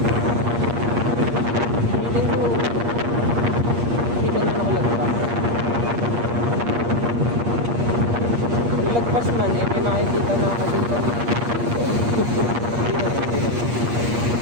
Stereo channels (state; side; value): late; left; 8.5 ms